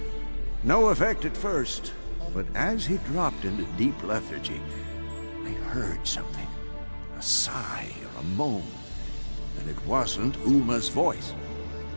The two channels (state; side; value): inverted; both; correlation -1.00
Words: No effect at first, but as he dropped into deep lethargy, I heard something. A sigh or a moan. And it wasn't Uma's voice.